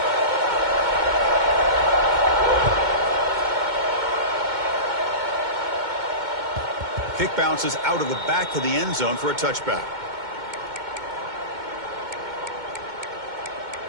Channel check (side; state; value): left; late; 2.2 ms